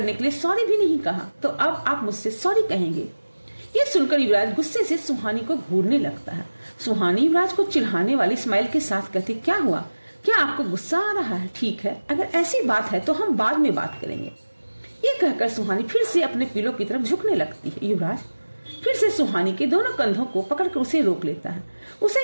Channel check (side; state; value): both; inverted; correlation -1.00